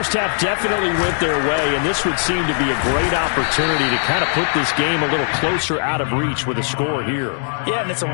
half definitely went their way, and this would seem to be a great opportunity to kind of put this game a little closer out of reach with a score here. Yeah, and it's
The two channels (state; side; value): silent; right; digital silence